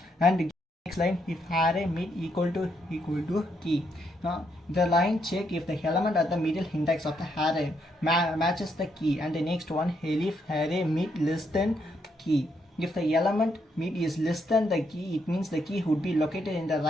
And next line, if array mid equal to key. Now the line check if the element at the middle index of the array matches the key, and the next one, if array mid less than key. If the element mid is less than the key, it means the key would be located in the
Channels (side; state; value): both; normal; correlation 0.76